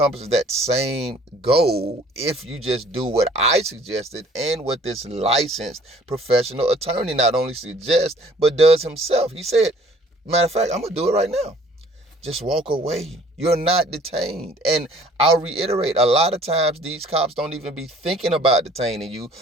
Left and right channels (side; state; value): both; normal; correlation 0.55